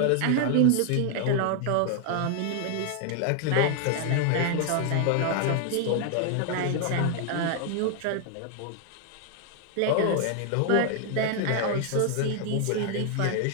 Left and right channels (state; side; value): different; both; correlation 0.00